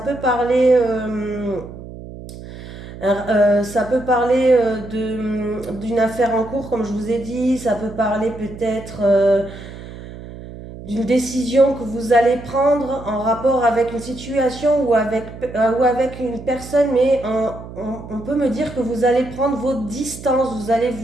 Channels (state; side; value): noise; right; hum, 14 dB below the sound